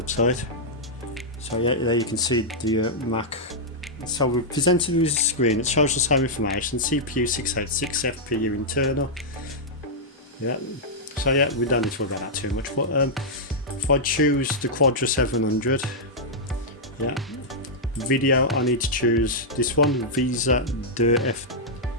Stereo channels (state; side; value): normal; both; correlation -0.08